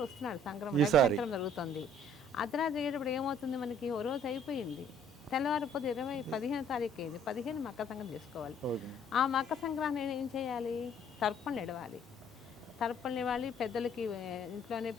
వస్తున్నాడు సంక్రమణ జరుగుతుంది. అర్ధరాత్రి అయ్యేటప్పుడు ఏమవుతుంది మనకి, ఓ రోజు అయిపోయింది. తెల్లవారిపోతే 15వ తారీఖు అయింది. 15 మకర సంక్రాంతి చేసుకోవాలి. ఆ మకర సంక్రాంతి ఏం చేయాలి? తర్పణలు ఇవ్వాలి. తర్పణలు ఇవ్వాలి. పెద్దలకి ఇంట్లోనే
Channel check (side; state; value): both; normal; correlation 0.59